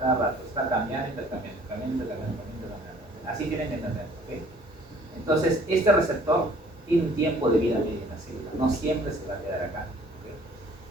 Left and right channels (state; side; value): normal; both; correlation 0.55